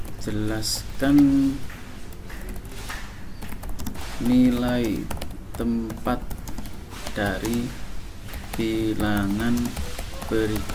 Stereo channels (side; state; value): both; identical; correlation 1.00